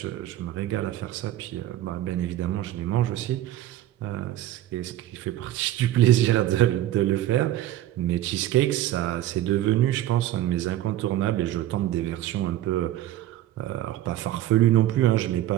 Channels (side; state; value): left; quieter; 13.7 dB